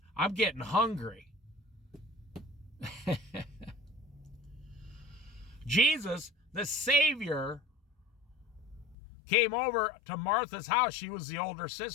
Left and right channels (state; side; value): drops out; right; at 9.0 s